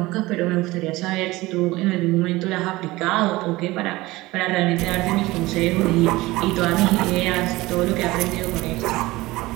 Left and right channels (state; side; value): quieter; left; 19.7 dB